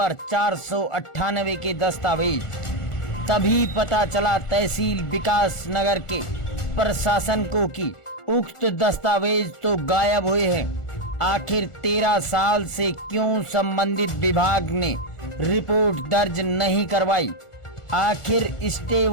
498 के दस्तावेज। तभी पता चला तहसील विकास नगर के प्रशासन को कि उक्त दस्तावेज तो गायब हुए हैं। आखिर 13 साल से क्यों संबंधित विभाग ने रिपोर्ट दर्ज नहीं करवाई? आखिर स्टे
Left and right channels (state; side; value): late; right; 1.4 ms